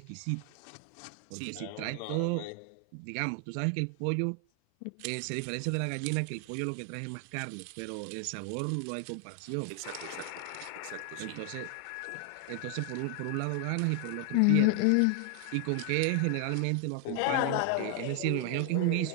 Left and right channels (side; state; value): both; different; correlation 0.00